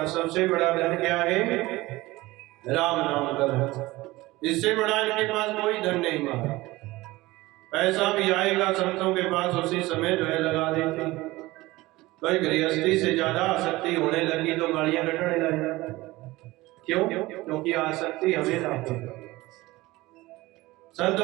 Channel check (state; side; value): quieter; left; 19.6 dB